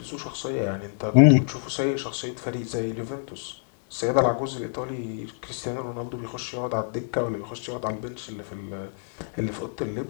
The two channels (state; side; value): silent; right; digital silence